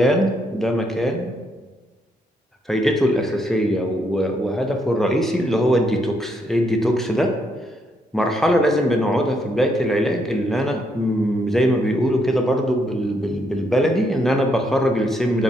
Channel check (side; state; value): both; normal; correlation 0.75